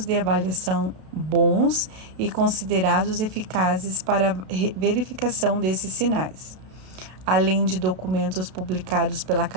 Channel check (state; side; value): late; left; 32 ms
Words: de avaliação bons e considerados eficazes para a verificação desses sinais, além de documentos publicados pela